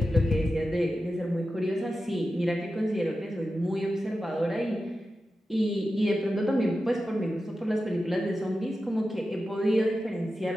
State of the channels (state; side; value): normal; both; correlation 0.92